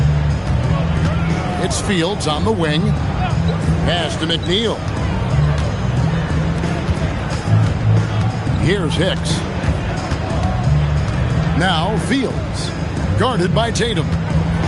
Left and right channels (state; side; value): identical; both; correlation 1.00